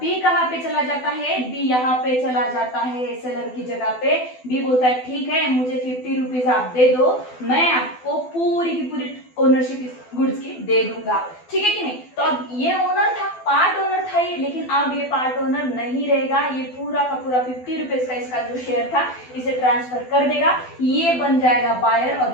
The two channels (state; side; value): late; right; 12 ms